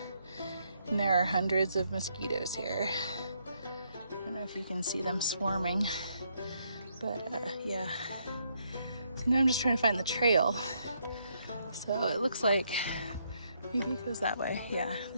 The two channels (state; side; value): inverted; both; correlation -0.74